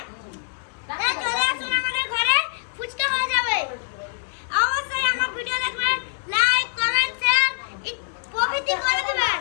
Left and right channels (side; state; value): right; silent; digital silence